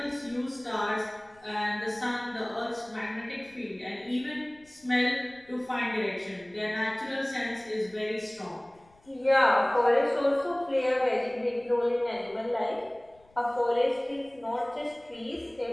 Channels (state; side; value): noise; left; rumble, 30 dB below the sound